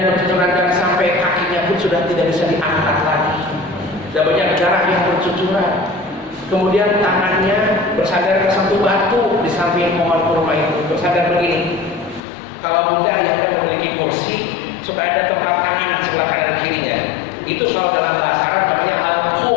bercucuran darah sampai kakinya pun sudah tidak bisa diangkat lagi. Sudah banyak darah yang bercucuran. Kemudian tangannya bersandar ke satu batu di samping pohon kurma itu, bersandar begini. Kalau Bunda Ayahanda memiliki kursi, suka ada tempat tangan di sebelah kanan kirinya. Itu kalau dalam bahasa Arab namanya al-qu,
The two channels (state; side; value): drops out; right; at 12.2 s